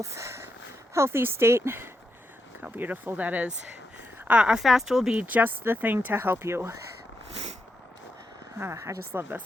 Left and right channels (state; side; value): normal; both; correlation 0.84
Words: healthy state. Look how beautiful that is. A fast will be just the thing to help you. I just love